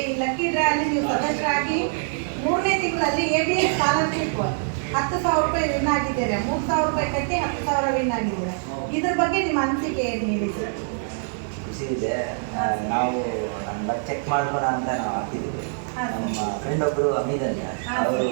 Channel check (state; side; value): silent; left; digital silence